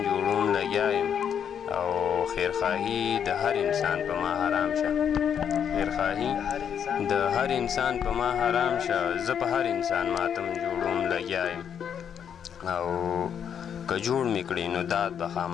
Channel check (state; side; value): quieter; right; 8.2 dB